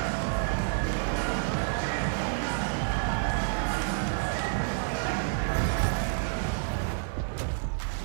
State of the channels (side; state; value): left; silent; digital silence